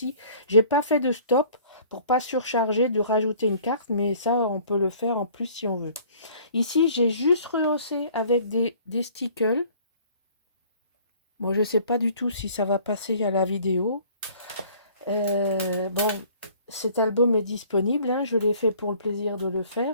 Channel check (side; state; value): both; inverted; correlation -0.53